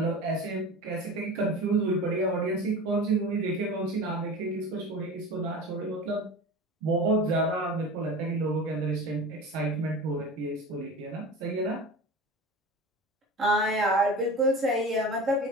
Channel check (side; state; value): both; normal; correlation 0.33